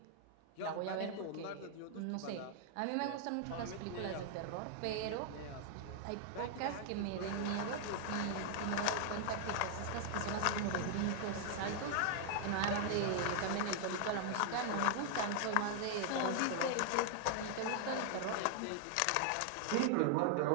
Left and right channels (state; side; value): different; both; correlation 0.00